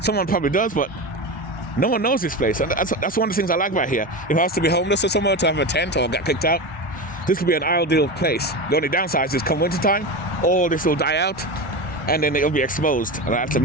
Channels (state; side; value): normal; both; correlation 0.23